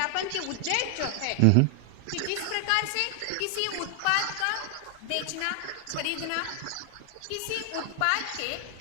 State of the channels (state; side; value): different; both; correlation 0.00